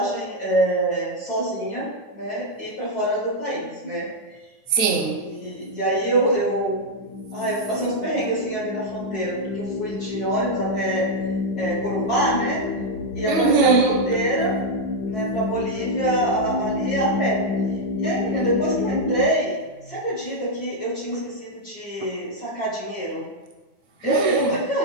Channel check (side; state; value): right; late; 9.6 ms